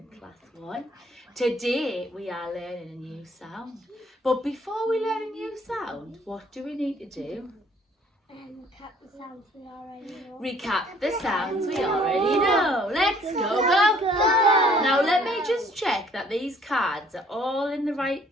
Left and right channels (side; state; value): both; normal; correlation 0.59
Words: class 1. Today we are learning a new sound. But before we learn a new sound, what do we need to do? Recap the sounds we already know. Recap the sounds we already know. Let's go. Now let me just check that these cards are all in the right